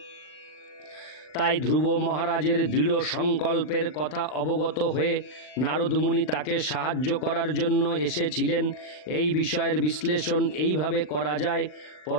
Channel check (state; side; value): late; right; 39 ms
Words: তাই ধ্রুব মহারাজের দৃঢ় সংকল্পের কথা অবগত হয়ে নারদ মুনি তাকে সাহায্য করার জন্য এসেছিলেন। এই বিষয়ের বিশ্লেষণ এইভাবে করা যায়: